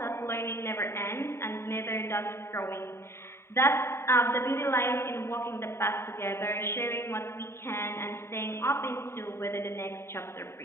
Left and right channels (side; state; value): right; late; 0.12 ms